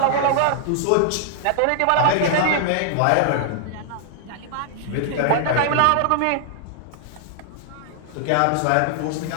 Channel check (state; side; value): different; both; correlation 0.00